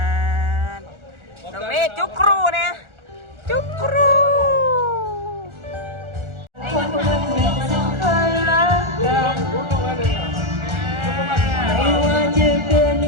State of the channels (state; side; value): late; left; 1.4 ms